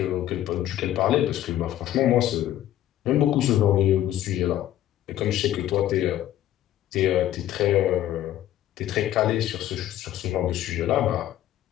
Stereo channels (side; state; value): right; quieter; 12.7 dB